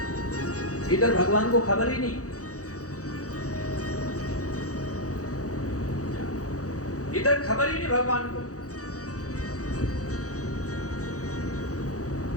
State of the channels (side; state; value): right; late; 0.66 ms